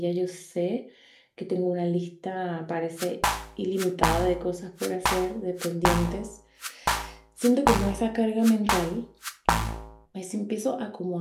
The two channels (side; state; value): both; identical; correlation 1.00